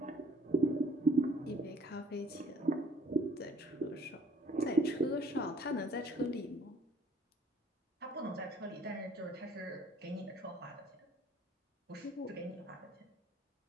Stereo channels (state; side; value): normal; both; correlation 0.56